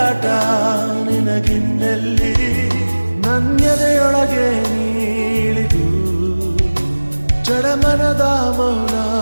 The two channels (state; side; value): inverted; both; correlation -1.00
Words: ನಿನಗಿನ್ನಲ್ಲಿ ನನ್ಯದೆಯೊಳಗೆ ನೀಳಿದು ಜಡಮನದ ಮೌನ